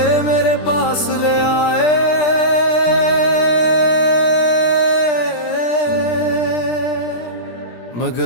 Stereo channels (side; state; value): right; late; 17 ms